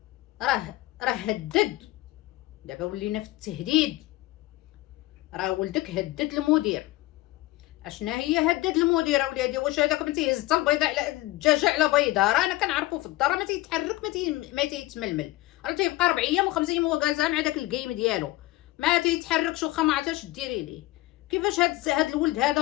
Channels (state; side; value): quieter; right; 18.3 dB